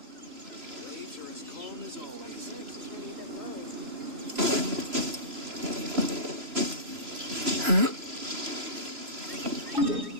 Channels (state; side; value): late; left; 3.0 ms